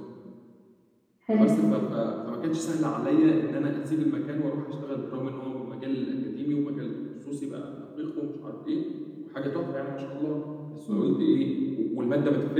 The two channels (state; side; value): identical; both; correlation 1.00